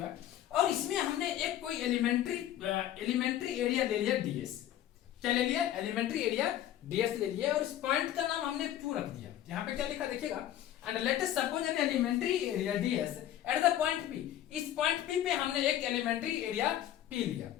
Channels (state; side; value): quieter; right; 12.1 dB